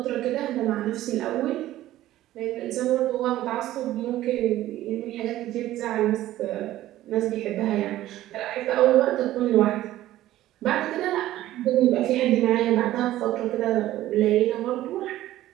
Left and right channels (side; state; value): left; quieter; 14.5 dB